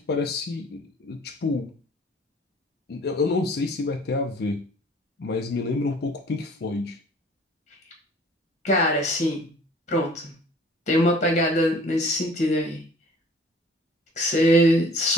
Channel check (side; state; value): both; normal; correlation 0.51